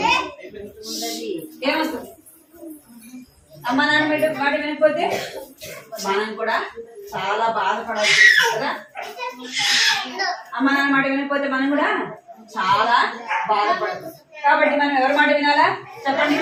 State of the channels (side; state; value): both; identical; correlation 1.00